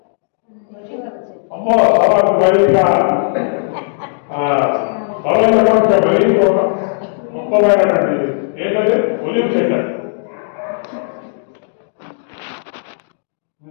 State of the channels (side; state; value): right; silent; digital silence